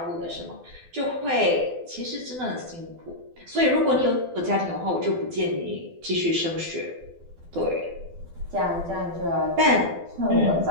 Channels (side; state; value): left; late; 12 ms